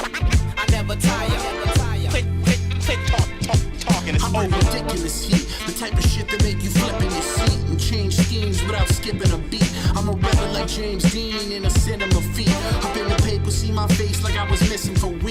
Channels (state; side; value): identical; both; correlation 1.00